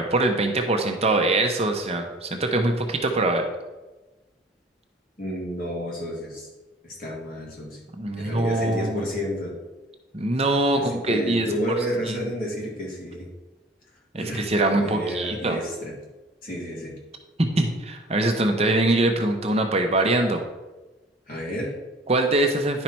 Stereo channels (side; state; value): both; normal; correlation 0.47